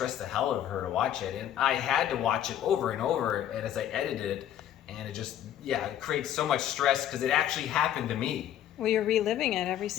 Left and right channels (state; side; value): quieter; right; 11.1 dB